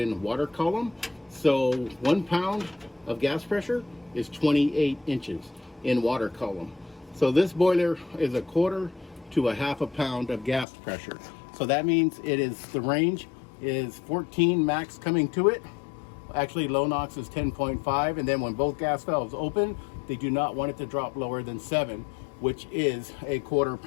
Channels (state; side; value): drops out; right; at 10.7 s